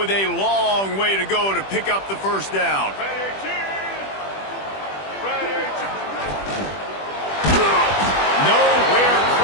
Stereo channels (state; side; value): late; right; 20 ms